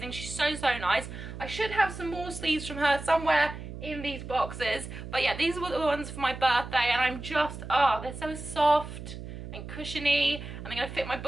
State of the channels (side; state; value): right; noise; hum, 10 dB below the sound